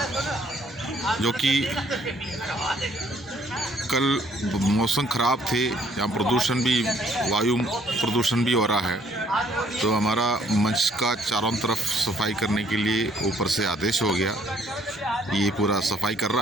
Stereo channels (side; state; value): both; normal; correlation 0.63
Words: जो कि कल मौसम ख़राब थे, यहाँ प्रदूषण भी, वायु प्रदूषण भी हो रहा है, तो हमारा मंच का चारों तरफ सफाई करने के लिए ऊपर से आदेश हो गया। ये पूरा सफाई कर